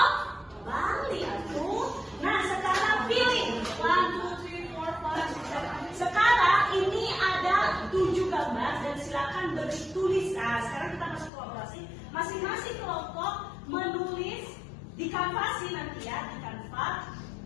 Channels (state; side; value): drops out; right; at 11.3 s